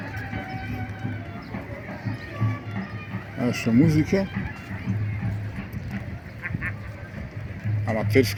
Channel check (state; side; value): identical; both; correlation 1.00